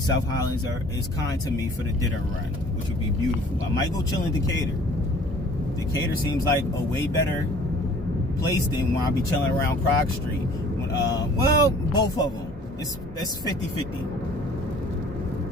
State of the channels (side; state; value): both; normal; correlation 0.52